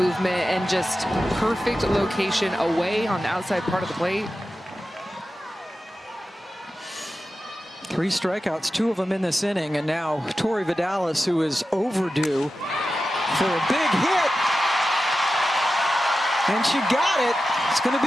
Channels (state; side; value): normal; both; correlation 0.93